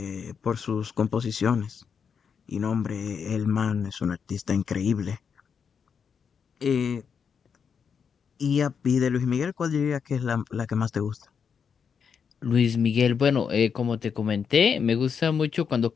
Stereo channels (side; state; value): right; quieter; 6.6 dB